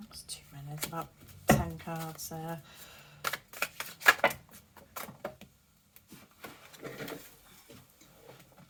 too many. It's about 10 cards there.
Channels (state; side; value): identical; both; correlation 1.00